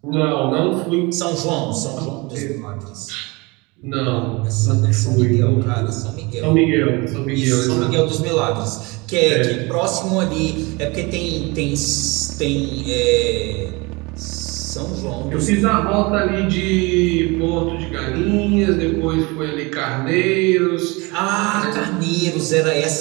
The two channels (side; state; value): left; quieter; 25.8 dB